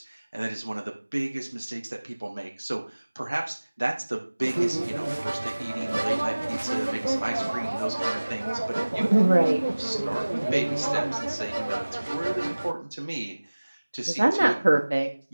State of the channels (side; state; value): both; inverted; correlation -1.00